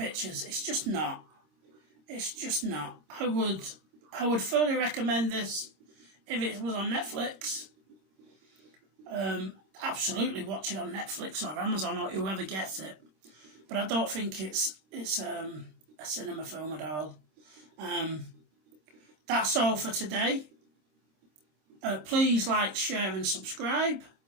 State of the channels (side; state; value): left; late; 26 ms